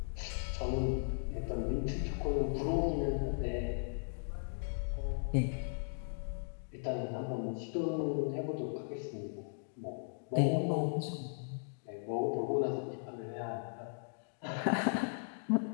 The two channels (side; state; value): right; silent; digital silence